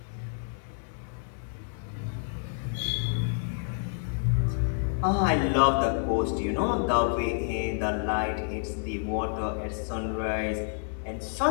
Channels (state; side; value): silent; right; digital silence